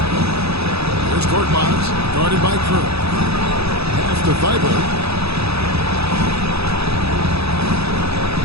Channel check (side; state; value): left; late; 0.78 ms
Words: Here's Korkmaz, guarded by Crew. Pass to Thibault.